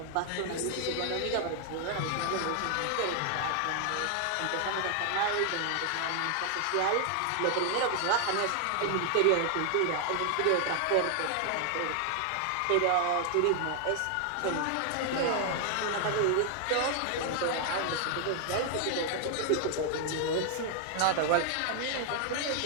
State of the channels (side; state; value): both; different; correlation 0.00